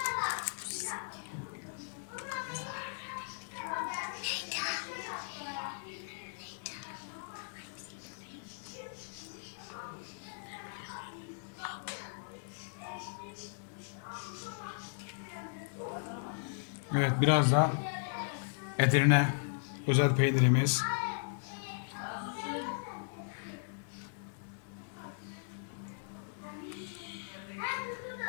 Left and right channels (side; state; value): right; silent; 53 dB below the other